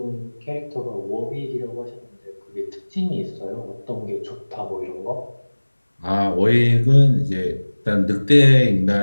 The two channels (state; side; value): inverted; both; correlation -1.00